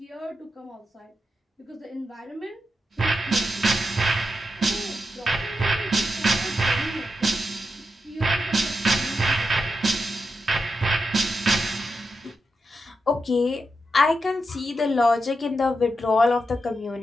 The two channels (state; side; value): normal; both; correlation 0.87